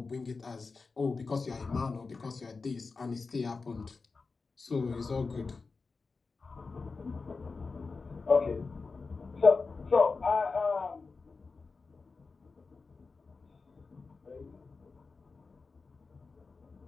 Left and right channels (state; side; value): quieter; right; 4.3 dB